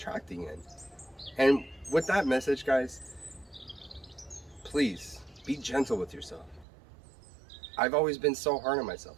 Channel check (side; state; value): left; drops out; at 6.7 s